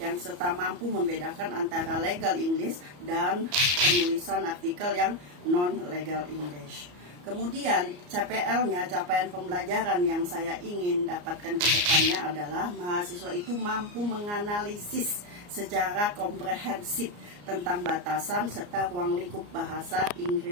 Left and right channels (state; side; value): late; left; 34 ms